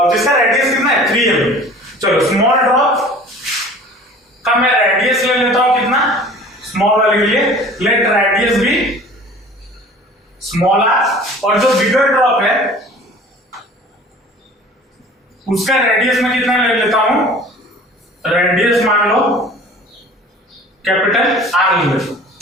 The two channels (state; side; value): normal; both; correlation 0.45